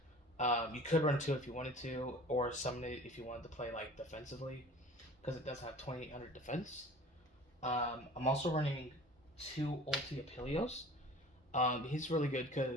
You could run 2 if you wanted to, or summon it if you wanted to play like defensively, because it does have 2800 defense. I'm also running 2 Ulti Apelios. He's really good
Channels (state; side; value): normal; both; correlation 0.44